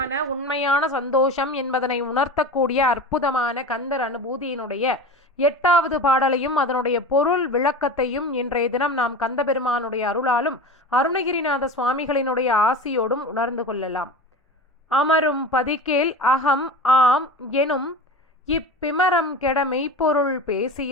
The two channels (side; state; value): both; normal; correlation 0.31